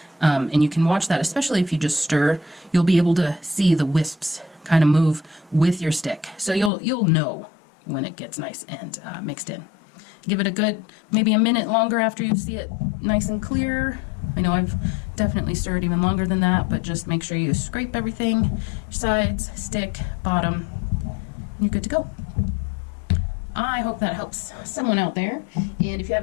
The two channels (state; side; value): drops out; right; at 6.7 s